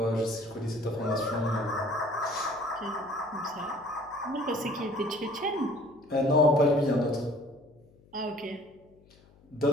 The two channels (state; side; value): noise; left; hum, 28 dB below the sound